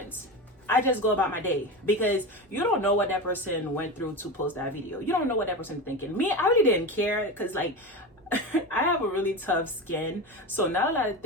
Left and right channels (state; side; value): normal; both; correlation 0.24